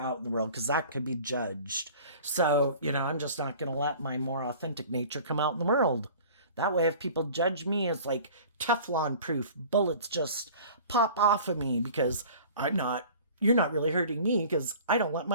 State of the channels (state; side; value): inverted; both; correlation -0.44